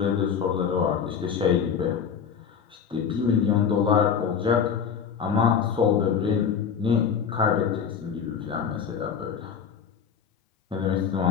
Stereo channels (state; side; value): quieter; right; 7.2 dB